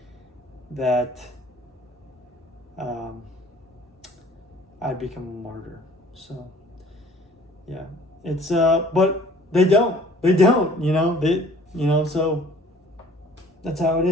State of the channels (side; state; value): both; normal; correlation 0.53